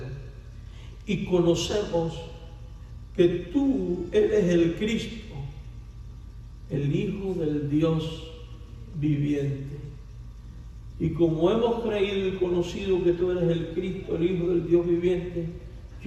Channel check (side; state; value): both; identical; correlation 1.00